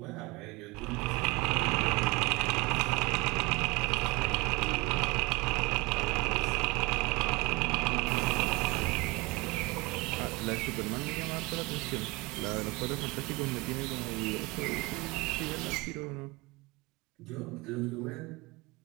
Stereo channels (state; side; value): quieter; left; 24.1 dB